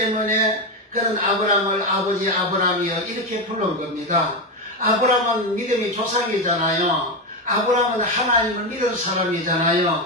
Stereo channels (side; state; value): both; normal; correlation 0.12